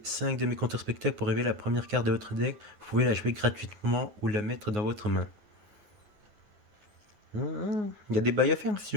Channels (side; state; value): left; late; 9.6 ms